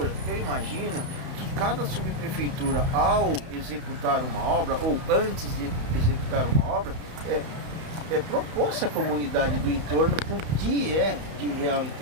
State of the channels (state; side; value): late; left; 32 ms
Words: eu imagino que cada subprefeitura, ao executar uma obra, ou antes de executar uma obra, propôs à comunidade do entorno o que é de real